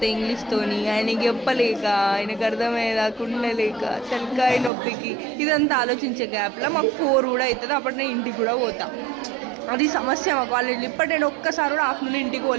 ఇంగ్లీష్తోని ఆయనకి చెప్పలేక, ఆయనకు అర్థమయ్యేదాకా ఉండలేక, తలకాయ నొప్పికి ఇదంతా ఆలోచించే గ్యాప్లో మాకు 4 కూడా అవుతుంది. అప్పుడు నేను ఇంటికి కూడా పోతా. అది సమస్య మా కాలేజీలో. ఇప్పటి నేను ఒక్కసారి కూడా ఆఫ్టర్నూన్ ఇంటికి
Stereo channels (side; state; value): left; drops out; at 4.7 s